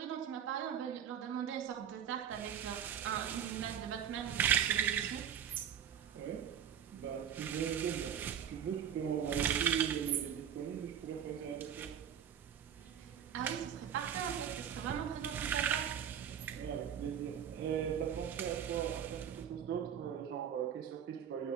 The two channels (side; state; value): left; quieter; 8.8 dB